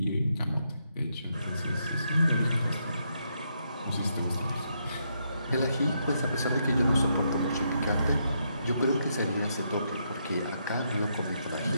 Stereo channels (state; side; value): inverted; both; correlation -0.78